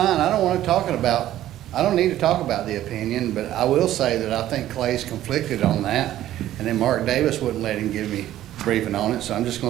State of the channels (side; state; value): left; quieter; 13.2 dB